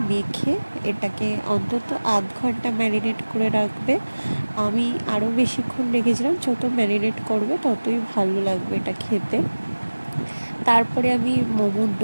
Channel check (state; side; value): inverted; both; correlation -1.00